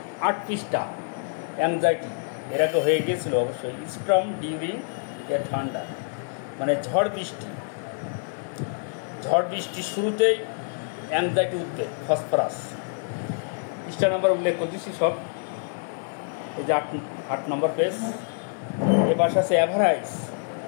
8 পৃষ্ঠা, অ্যাংজাইটি এর আগে হয়ে গিয়েছিল অবশ্যই। স্টর্ম ডিউরিং এ থান্ডার, মানে ঝড় বৃষ্টি শুরুতেই অ্যাংজাইটি উদ্বেগ, ফসফরাস। পৃষ্ঠা নাম্বার উল্লেখ করতেছি সব। এই যে 8 নম্বর পেজ। এবার আছে অ্যাভারাইজ,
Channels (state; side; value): silent; right; 61 dB below the other